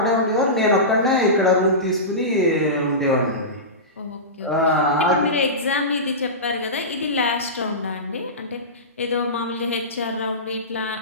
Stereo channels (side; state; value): both; normal; correlation -0.20